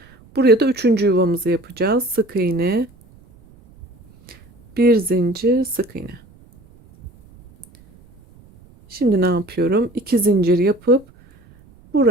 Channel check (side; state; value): right; noise; rumble, 27 dB below the sound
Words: Buraya da 3. yuvamızı yapacağız. Sık iğne, bir zincir, sık iğne. Şimdi ne yapıyorum? 2 zincir yapıp